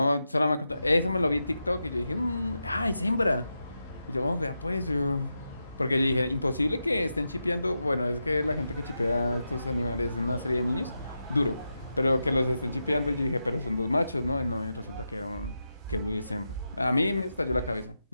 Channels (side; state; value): both; inverted; correlation -0.88